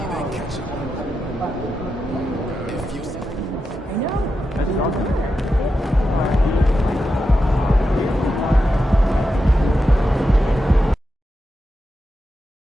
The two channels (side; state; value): both; normal; correlation 0.88